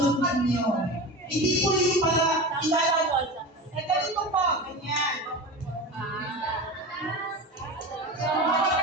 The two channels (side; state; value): both; normal; correlation 0.28